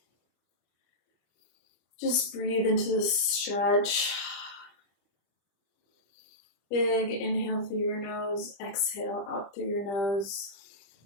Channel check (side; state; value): right; late; 25 ms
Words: Just breathe into the stretch. Big inhale through your nose, exhale out through your nose.